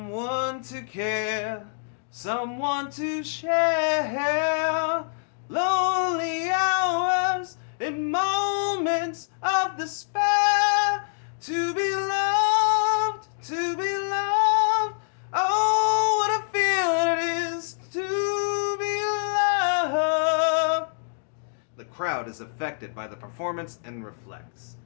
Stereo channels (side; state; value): right; silent; digital silence